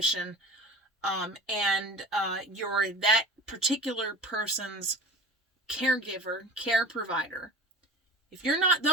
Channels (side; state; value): both; normal; correlation 0.37